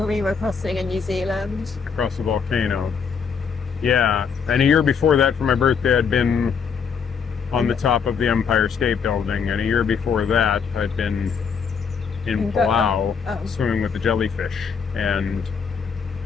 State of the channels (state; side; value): quieter; right; 6.3 dB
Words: crossing in New Zealand. Across the volcano. Yeah, and a year before that for my birthday I'd been on the top of the Empire State Building, and a year before that I'd been in Palau swimming with the jellyfish. And